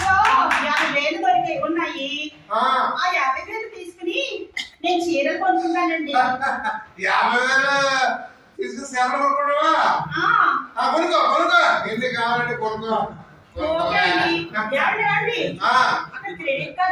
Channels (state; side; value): identical; both; correlation 1.00